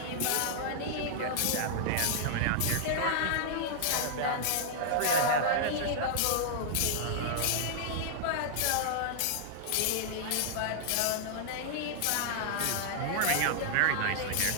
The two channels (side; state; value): both; different; correlation -0.01